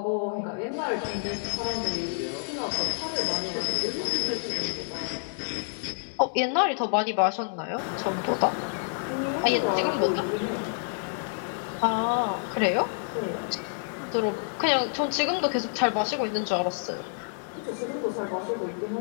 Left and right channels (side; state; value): right; silent; digital silence